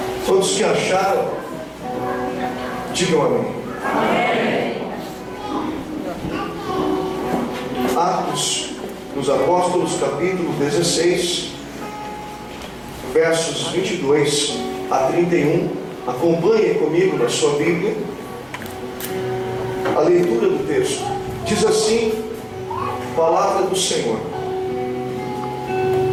Todos que acharam, digam amém. Atos dos Apóstolos, capítulo 16, versos 22 a 31. Acompanhem comigo na sua Bíblia a leitura do texto. Diz assim a palavra do Senhor:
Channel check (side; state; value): both; identical; correlation 1.00